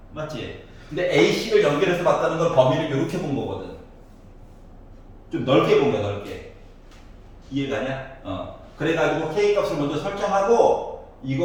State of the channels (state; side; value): identical; both; correlation 1.00